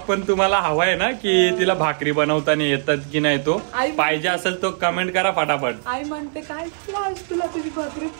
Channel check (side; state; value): left; silent; 59 dB below the other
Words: पण तुम्हाला हवाय ना, की तिला भाकरी बनवताना येतात की नाही, तो पाहिजे असेल तो कमेंट करा फटाफट. आई म्हणते काय तुला तुझी भाकरी